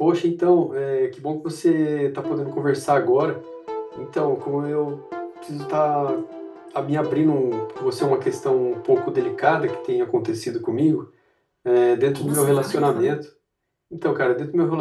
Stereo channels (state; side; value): identical; both; correlation 1.00